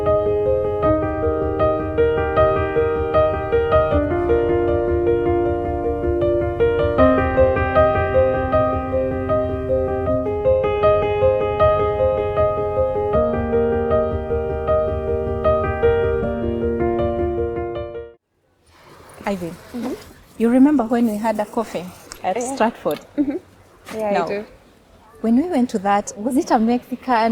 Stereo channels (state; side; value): identical; both; correlation 1.00